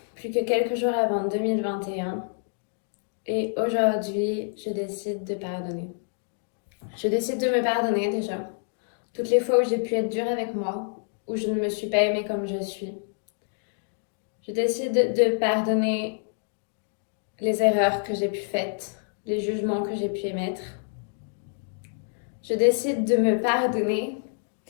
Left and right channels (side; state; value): right; silent; digital silence